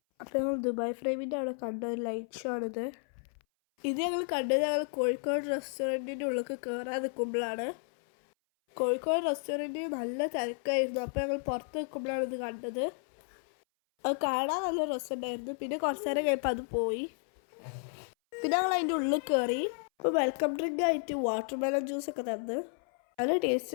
അപ്പോൾ ഞങ്ങൾ ദുബായ് ഫ്രെയിമിൻ്റെ അവിടെ കണ്ട ഒരു ലൈറ്റ് ഷോ ആണിത്. ഞങ്ങൾ കണ്ടത് ഞങ്ങൾ കോഴിക്കോട് റെസ്റ്റോറൻറ്റിൻ്റെ ഉള്ളിൽ കയറാൻ നിൽക്കുമ്പോഴാണ്. കോഴിക്കോട് റെസ്റ്റോറൻറ്റിൽ നല്ല തിരക്കായിരുന്നു. അപ്പോൾ ഞങ്ങൾ പുറത്ത് നിൽക്കുമ്പോഴാണ് ഇത് കണ്ടത്. അത് കാണാൻ നല്ല രസമുണ്ടായിരുന്നു. പിന്നെ കുറച്ച് നേരം കഴിയുമ്പോൾ അത് പോയി. പിന്നെ ഞങ്ങൾ അതിൻ്റെ ഉള്ളിൽ കയറി. അപ്പോൾ വെൽക്കം ഡ്രിങ്ക് ആയിട്ട് വാട്ടർ മെലൺ ജ്യൂസൊക്കെ തന്നു. നല്ല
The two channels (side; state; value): right; silent; 56 dB below the other